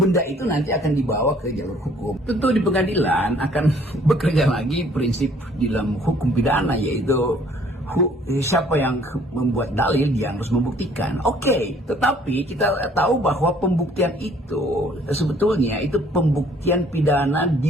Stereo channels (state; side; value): normal; both; correlation 0.59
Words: itu nanti akan dibawa ke jalur hukum. Tentu di pengadilan akan bekerja lagi prinsip di dalam hukum pidana, yaitu siapa yang membuat dalil dia harus membuktikan. Oke, tetapi kita tahu bahwa pembuktian itu sebetulnya itu pembuktian pidana di